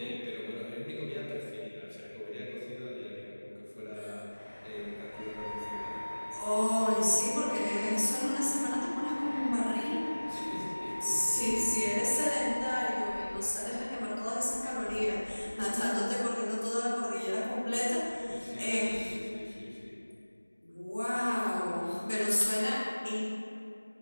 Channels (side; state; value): both; inverted; correlation -1.00